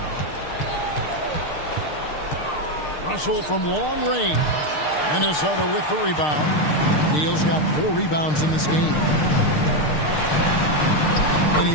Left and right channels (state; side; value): late; right; 6.6 ms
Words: Russell from long range. Minnesota with the rebound. Neal's got 4 rebounds in this game. And